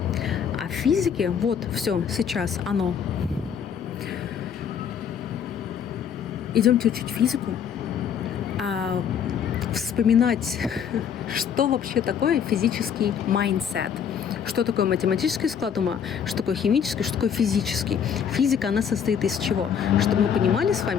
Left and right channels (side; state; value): right; quieter; 7.8 dB